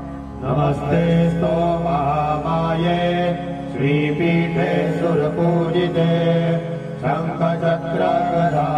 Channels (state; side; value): identical; both; correlation 1.00